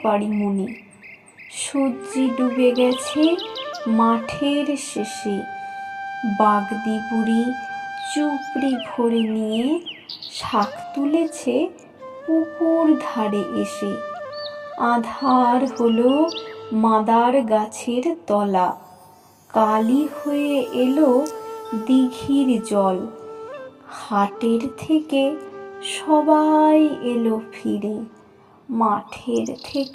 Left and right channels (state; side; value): identical; both; correlation 1.00